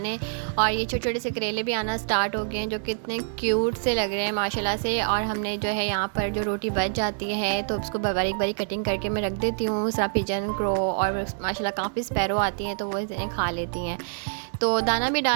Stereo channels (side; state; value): left; silent; digital silence